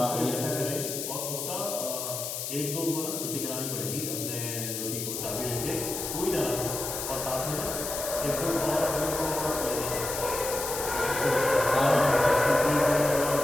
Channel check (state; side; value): noise; left; hiss, 5 dB below the sound